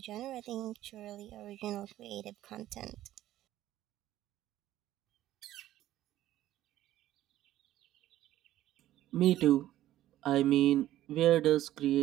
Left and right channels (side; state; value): left; quieter; 13.8 dB